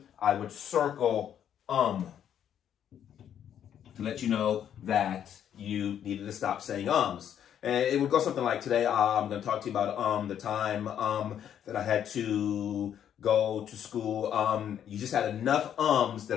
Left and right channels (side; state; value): right; quieter; 9.6 dB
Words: I would circle to let you know that you needed to stop saying ums. And it would go something like, today I'm going to talk to you about the time that I had to go to school. You just had enough ums